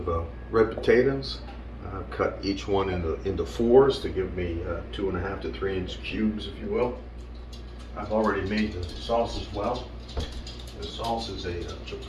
red potatoes. Cut each one into fours to give me 2.5 to 3 inch cubes, if you will. I've already made the sauce as well. The sauce is a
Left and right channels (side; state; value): both; identical; correlation 1.00